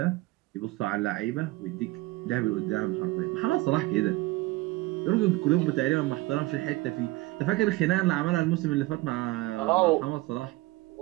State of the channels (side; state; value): left; quieter; 20.5 dB